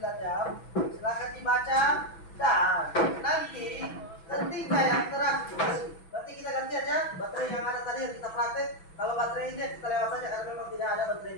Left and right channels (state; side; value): late; right; 6.1 ms